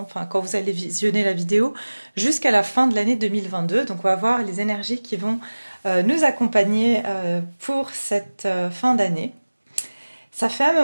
enfin quand vous allez visionner la vidéo, jusqu'à la fin de l'année 2022. Donc on va voir les énergies qui vont nous accompagner pour cette fin d'année. Ça fait un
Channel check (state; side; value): inverted; both; correlation -1.00